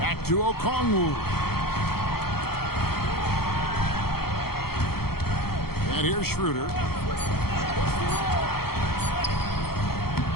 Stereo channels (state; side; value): late; right; 0.95 ms